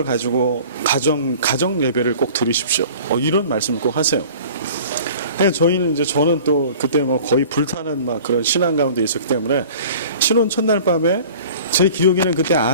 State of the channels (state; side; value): inverted; both; correlation -0.44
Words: 가지고 가정 예배를 꼭 드리십시오. 이런 말씀을 꼭 하세요. 저는 또 그때 뭐 거의 불타는 막 그런 신앙 가운데 있었기 때문에 신혼 첫날 밤에 제 기억에는 그때